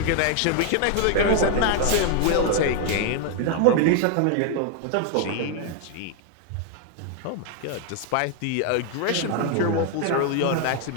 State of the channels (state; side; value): different; both; correlation 0.00